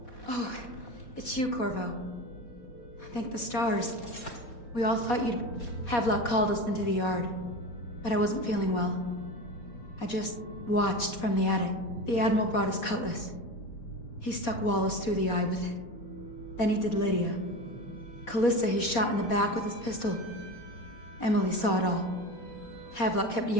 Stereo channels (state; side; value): late; right; 4.1 ms